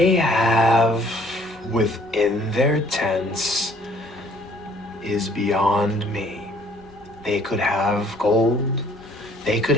have within their tents is beyond me. They could have gold, they could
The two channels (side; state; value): both; normal; correlation 0.59